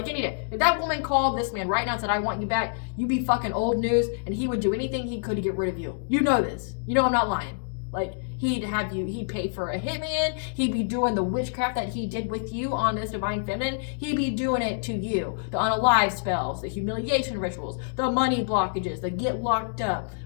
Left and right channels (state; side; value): silent; right; digital silence